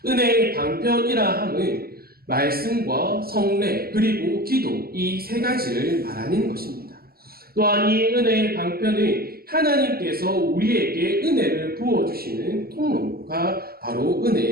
은혜의 방편이라 함은 말씀과 성례 그리고 기도 이 세 가지를 말하는 것입니다. 또한 이 은혜의 방편은 하나님께서 우리에게 은혜를 부어주시는 통로가 바로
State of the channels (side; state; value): left; late; 0.44 ms